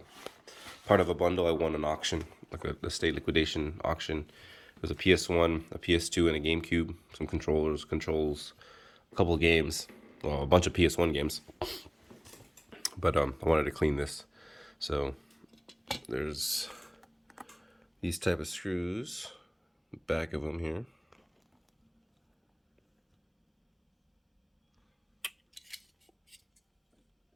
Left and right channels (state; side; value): identical; both; correlation 1.00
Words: part of a bundle. I won an auction, like a state liquidation auction. It was a PS1, a PS2, and a GameCube. Some controls, a couple of games, well, a bunch of PS1 games. But I wanted to clean this, so there's these type of screws, back of them here.